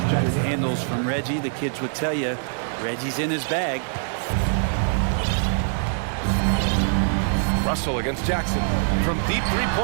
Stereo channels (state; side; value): silent; left; 63 dB below the other